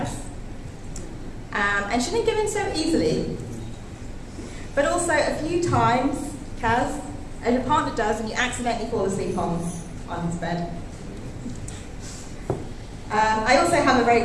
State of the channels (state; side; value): identical; both; correlation 1.00